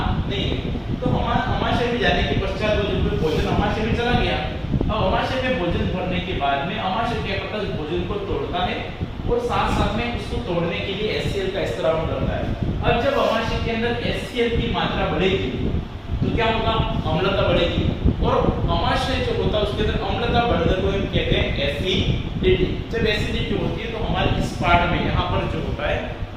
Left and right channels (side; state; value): both; identical; correlation 1.00